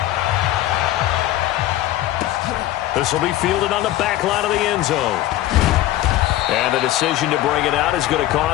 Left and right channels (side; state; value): right; quieter; 14.6 dB